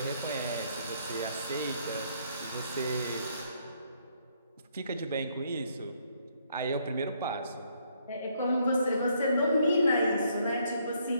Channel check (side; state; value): both; inverted; correlation -0.69